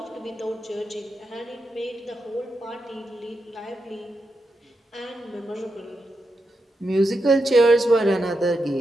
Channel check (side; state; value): both; normal; correlation 0.86